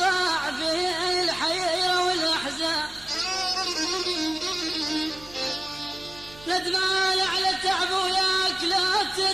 به الحيرة والأحزان. ندمان على تعب وياك، لا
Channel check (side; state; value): right; noise; hum, 20 dB below the sound